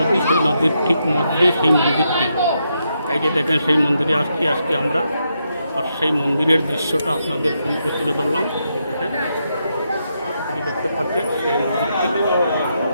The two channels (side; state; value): both; inverted; correlation -0.81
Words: সেই নদীর ঠিক মধ্যে সেই মন্দিরটি। এই যে দেখেন, সেই মন্দিরে আসছি আজকে আমরা, আর সেই মন্দিরের দৃশ্যটা আপনাদের সম্মুখে তুলে ধরলাম। এই যে দেখতে পাচ্ছেন সেই মন্দিরটি,